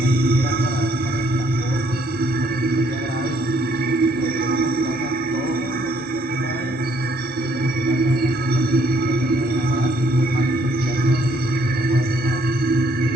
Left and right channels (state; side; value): normal; both; correlation 0.67